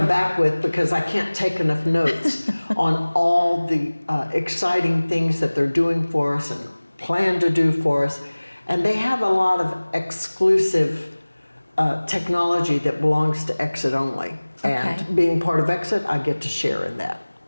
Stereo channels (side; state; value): both; inverted; correlation -1.00